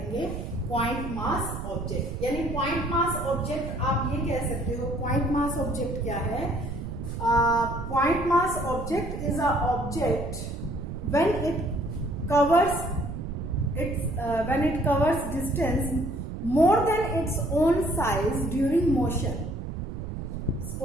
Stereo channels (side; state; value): right; noise; rumble, 6 dB below the sound